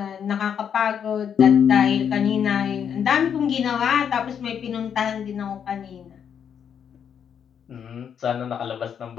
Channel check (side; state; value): right; quieter; 8.0 dB